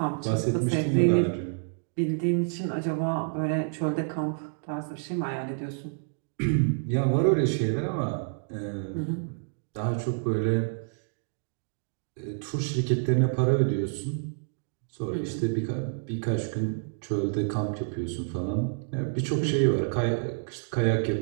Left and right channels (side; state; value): left; silent; digital silence